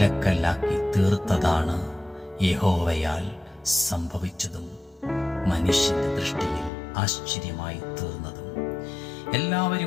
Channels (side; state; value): right; drops out; at 6.7 s